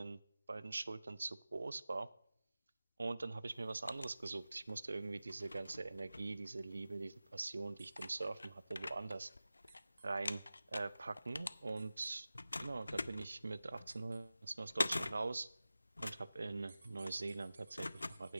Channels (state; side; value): inverted; both; correlation -0.96